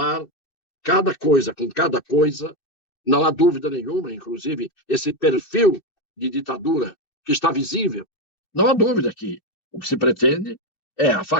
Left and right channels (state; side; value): late; right; 2.7 ms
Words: cada coisa com cada coisa, não há dúvida nenhuma, inclusive esse perfil de ditadura que está visível, não há dúvida que o que se pretende é a